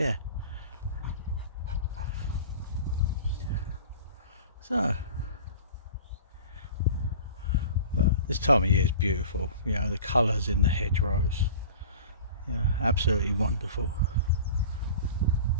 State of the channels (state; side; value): inverted; both; correlation -0.40